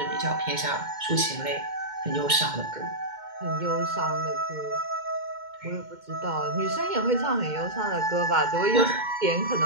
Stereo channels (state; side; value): late; left; 2.1 ms